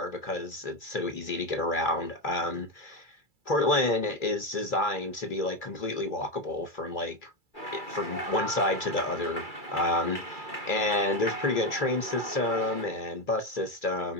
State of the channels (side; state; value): right; late; 2.3 ms